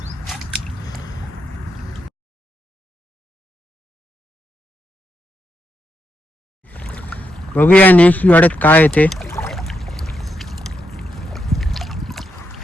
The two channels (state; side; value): normal; both; correlation 0.82